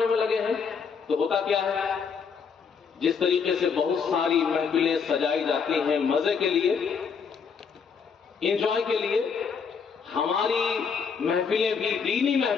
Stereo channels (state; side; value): quieter; right; 6.0 dB